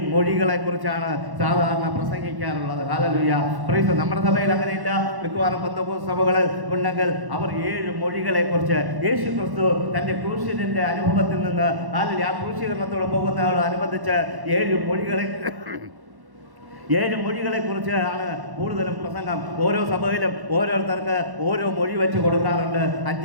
മൊഴികളെ കുറിച്ചാണ് സാധാരണ പ്രസംഗിക്കാറുള്ളത്. Hallelujah praise. നമ്മുടെ സഭയിൽ അങ്ങനെയില്ല. മിക്കവാറും പെന്തക്കോസ്ത് സഭകളിൽ ഉണ്ടെങ്കിൽ അവർ 7 മൊഴികളെ കുറിച്ച് യേശു ക്രിസ്തു തന്റെ ക്രൂശിന്റെ അനുഭവത്തിൽ നിന്ന് ആ ക്രൂശീകരണത്തോട് പോകുന്നതോടനുബന്ധിച്ച് 7 മൊഴികളെ 7 മൊഴികളെ കുറിച്ച് ആണ് കൂടുതലും പ്രസംഗം. ഓരോ സഭയിലും ഓരോരുത്തർക്ക് ഓരോ മൊഴി വെച്ച് കൊടുക്കാറുണ്ട്.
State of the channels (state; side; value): late; left; 1.1 ms